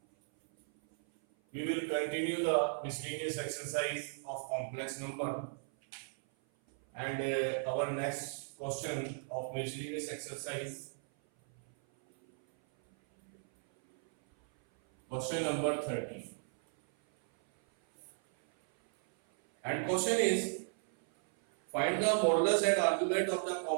we will continue the miscellaneous exercise of complex number and our next question of miscellaneous exercise, question number 30, and question is find the modulus and argument of the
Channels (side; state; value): left; silent; 54 dB below the other